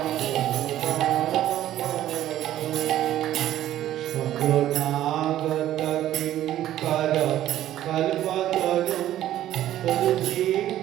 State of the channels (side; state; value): left; quieter; 12.9 dB